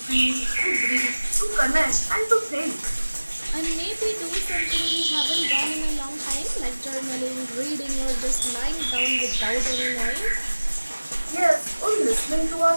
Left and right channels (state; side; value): inverted; both; correlation -1.00